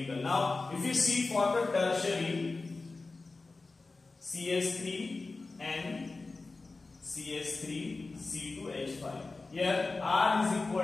Now, if you see for the tertiary, CS3 and CS3 C2H5. Here R is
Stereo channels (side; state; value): right; quieter; 3.7 dB